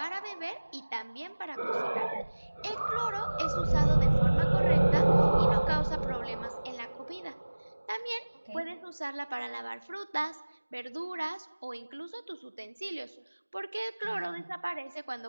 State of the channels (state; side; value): inverted; both; correlation -1.00